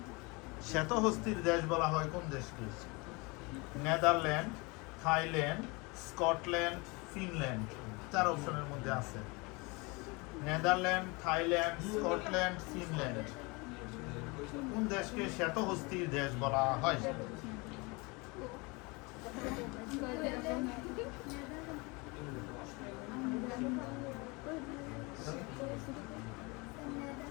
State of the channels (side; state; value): right; quieter; 27.0 dB